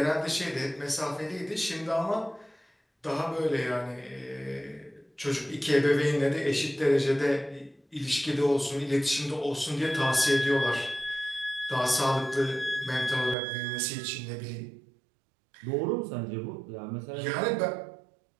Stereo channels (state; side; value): drops out; left; at 13.4 s